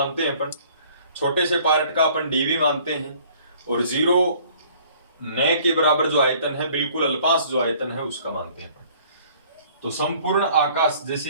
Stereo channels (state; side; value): inverted; both; correlation -0.56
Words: हैं अपन। छोटे से पार्ट का अपन डीवी मानते हैं, और 0 नए के बराबर जो आयतन है बिल्कुल अल्पांश जो आयतन है उसका मानते हैं अपन। तो संपूर्ण आकाश,